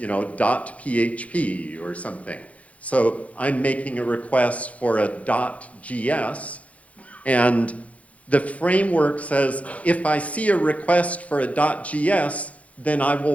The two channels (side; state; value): right; late; 0.066 ms